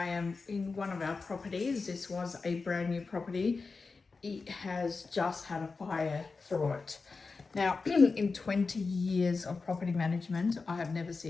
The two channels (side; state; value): right; quieter; 4.3 dB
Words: am in one of our properties. This was a brand new property. It has just had a fire through it. Now, in 20 years of property management, I have never